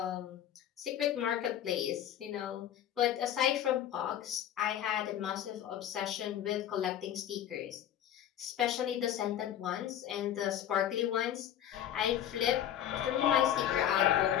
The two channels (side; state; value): right; quieter; 10.8 dB